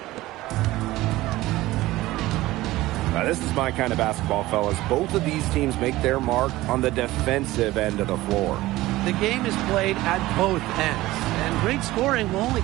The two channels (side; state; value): left; quieter; 17.6 dB